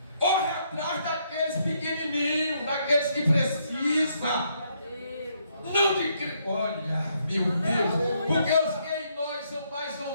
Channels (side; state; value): both; inverted; correlation -0.73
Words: Corre atrás daqueles pequenininhos, daqueles que precisam. Não de... Olha, meu Deus. Porque os que em nós são mais